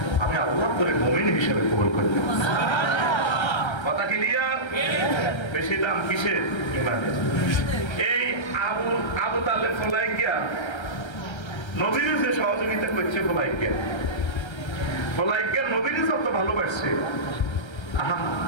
আমি আল্লাহ করে মুমিন হিসেবে কবুল করতে কথা ক্লিয়ার বেশি দাম কিসের ইমানের এই আবু তালেব ফলাইকিয়া নবীর যে সহযোগিতা করছে ফলাইকিয়া নবীর যত ভালোবাসছে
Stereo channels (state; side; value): late; right; 1.3 ms